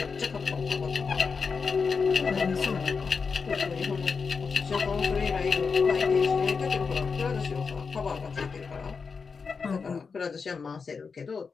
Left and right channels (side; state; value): right; quieter; 5.2 dB